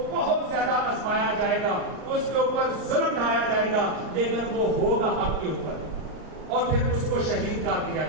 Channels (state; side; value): late; left; 38 ms